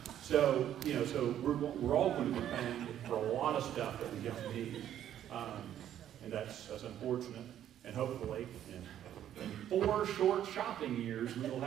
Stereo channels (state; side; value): quieter; left; 10.9 dB